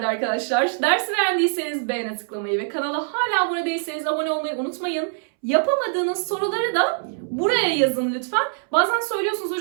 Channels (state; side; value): silent; left; 63 dB below the other